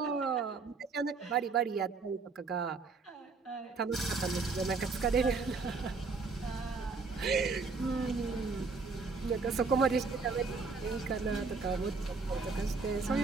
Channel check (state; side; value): quieter; left; 4.4 dB